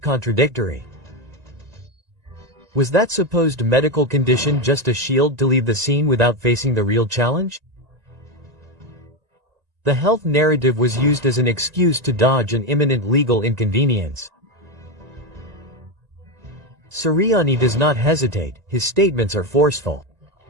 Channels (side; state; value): left; late; 1.9 ms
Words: Was that supposed medical condition just a shield to leave the scene without facing the real challenge? The health narrative was used as an excuse to dodge an imminent legal inconvenience. CERIANI does not hesitate, his statements are forceful.